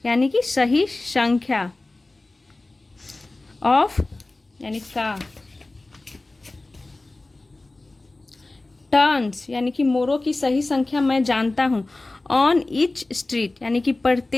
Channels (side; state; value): right; quieter; 3.0 dB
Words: यानी कि सही संख्या, ऑफ यानी का, टर्न्स यानी कि मोरों की सही संख्या मैं जानता हूँ, ऑन ईच स्ट्रीट यानी कि